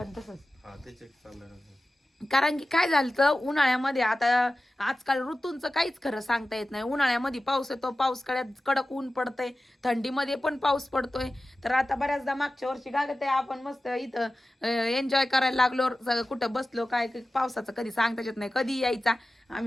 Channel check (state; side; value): normal; both; correlation 0.95